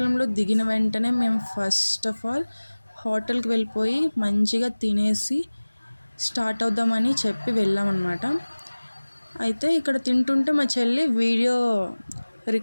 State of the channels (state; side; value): inverted; both; correlation -1.00